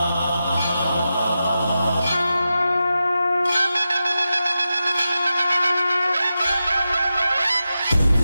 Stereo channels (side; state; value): both; inverted; correlation -0.91